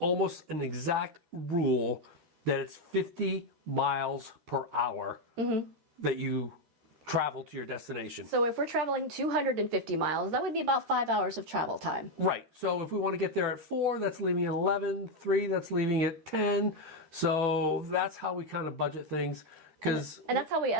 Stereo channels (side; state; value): left; late; 13 ms